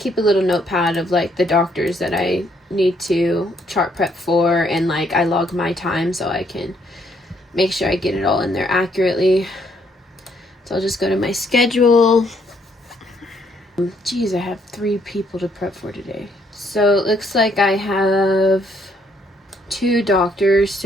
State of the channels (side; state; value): both; normal; correlation 0.69